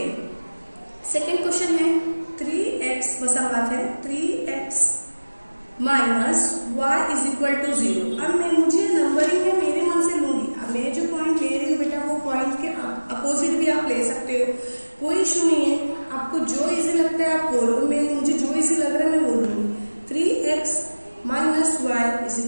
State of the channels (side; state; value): both; inverted; correlation -1.00